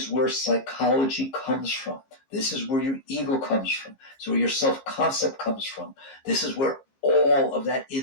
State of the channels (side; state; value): right; late; 15 ms